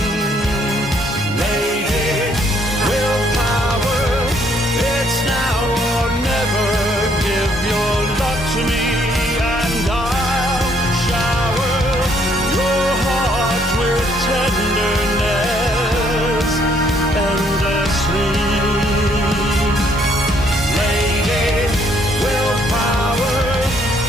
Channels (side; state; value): both; normal; correlation 0.68